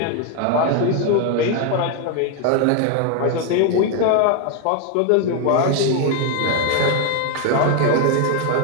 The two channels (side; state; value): both; different; correlation 0.01